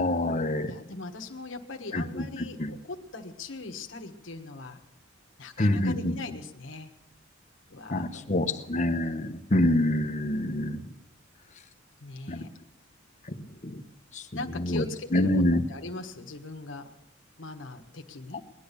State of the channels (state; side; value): normal; both; correlation 0.61